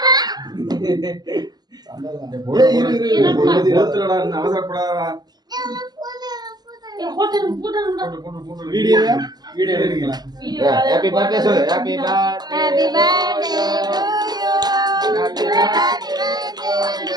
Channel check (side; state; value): left; late; 0.20 ms